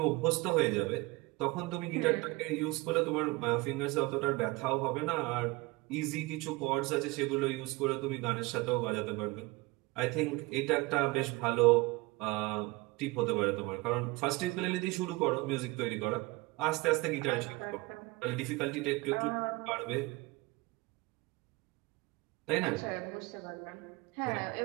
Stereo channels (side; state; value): left; quieter; 22.8 dB